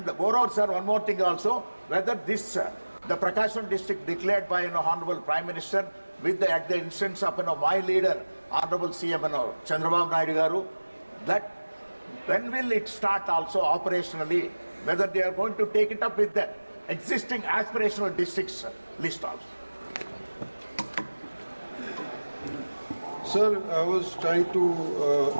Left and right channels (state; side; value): inverted; both; correlation -1.00